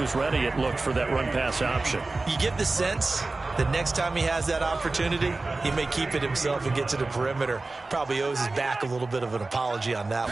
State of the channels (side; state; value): left; quieter; 3.4 dB